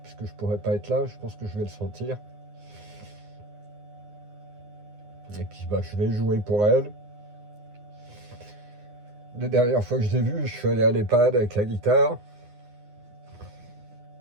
je pourrai pas être là, je pense que je vais le sentir. Et puis bah, je vais jouer pour elle. La dernière fois que je l'ai vue, je suis allé à l'EHPAD avec la guitare.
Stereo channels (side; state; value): left; late; 9.7 ms